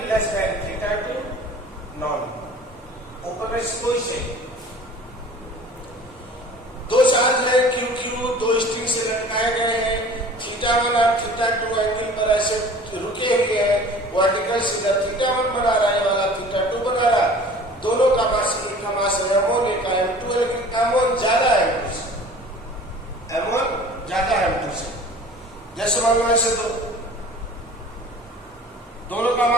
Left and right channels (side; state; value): both; normal; correlation 0.45